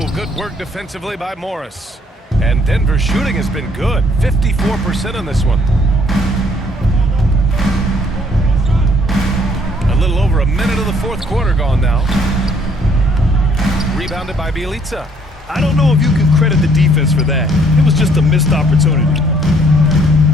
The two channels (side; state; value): both; normal; correlation 0.63